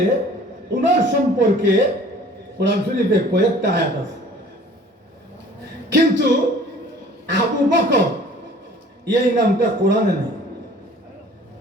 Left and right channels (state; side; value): normal; both; correlation 0.50